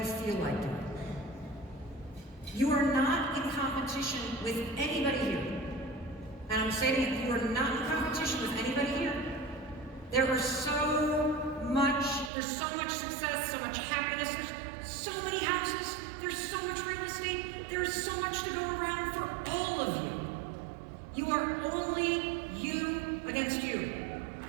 feel like doing. You are not in competition with anybody here. And I'm saying it, you are not in competition with anybody here. There's so much success, so much happiness, there's so many houses, there's so much real estate, there's so much to go around for all of you. You are only you against you.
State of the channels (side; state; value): left; drops out; at 12.3 s